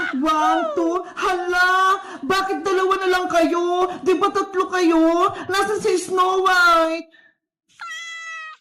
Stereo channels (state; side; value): identical; both; correlation 1.00